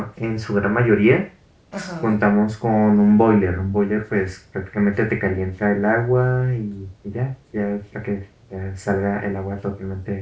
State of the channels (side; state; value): both; identical; correlation 1.00